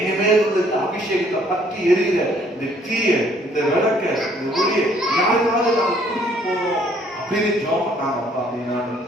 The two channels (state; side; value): normal; both; correlation 0.62